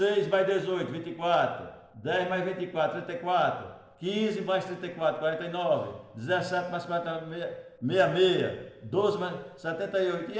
mais 18, 24. 10 mais 24, 34. 15 mais 34, 49. 17 mais 40, 66. 12 mais 78. E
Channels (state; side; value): identical; both; correlation 1.00